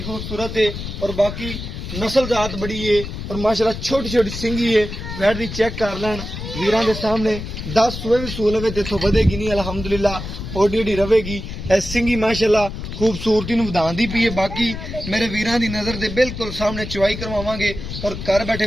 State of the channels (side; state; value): left; noise; rumble, 8 dB below the sound